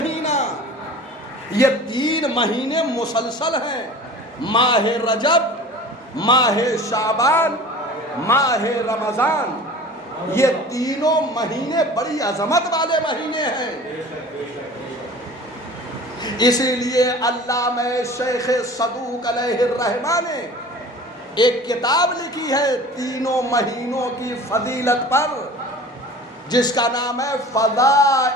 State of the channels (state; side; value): normal; both; correlation 0.41